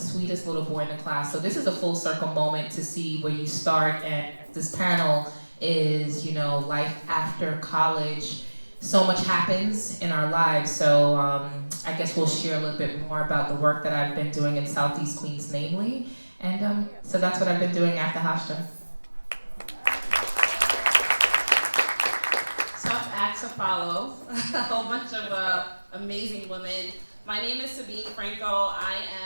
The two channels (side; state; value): both; inverted; correlation -1.00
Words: little boy in the class. So this is a full circle moment to see where you start, and this panel is, life after college. So much happens in our lives, so I guess we'll share a little bit more about the work that I've been doing in Southeast Queens, namely, and so that's what I've been doing after Hofstra. So had to follow a whole bunch of amazing women. My name is Sabine Franco. I